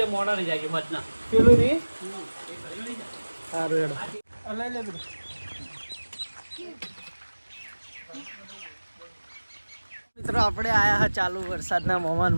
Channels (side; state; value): both; inverted; correlation -1.00